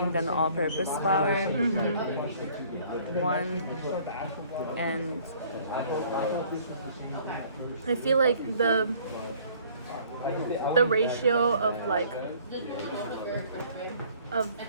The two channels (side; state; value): both; inverted; correlation -0.56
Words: than the all-purpose flour one. And I feel like the ratio of like